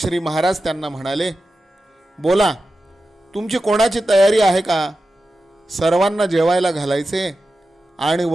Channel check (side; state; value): both; normal; correlation 0.92